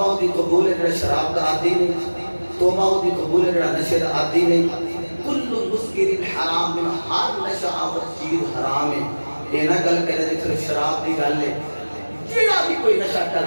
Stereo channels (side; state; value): both; inverted; correlation -1.00